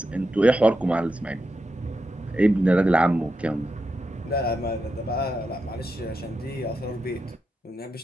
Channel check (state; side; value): normal; both; correlation 0.87